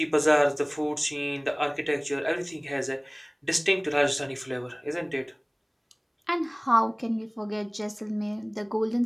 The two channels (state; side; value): identical; both; correlation 1.00